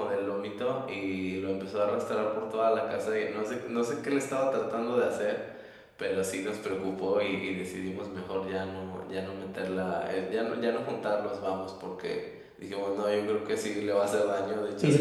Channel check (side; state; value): both; identical; correlation 1.00